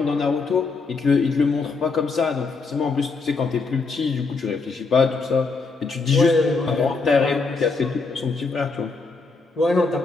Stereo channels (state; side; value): quieter; right; 4.2 dB